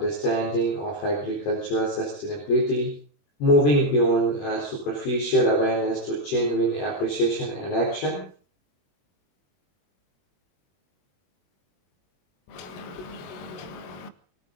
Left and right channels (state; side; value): late; right; 22 ms